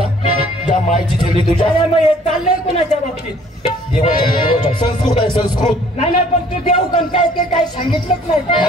ज्या मायची चेहरी तुझ्या अरे मग हे चाललंय कुणाच्या बाबतीत देवाच्या संस्कृत आहे संस्कृत नाही नाही पण तू देऊ पण काय ते काय सांगितलंच नाही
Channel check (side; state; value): both; normal; correlation 0.57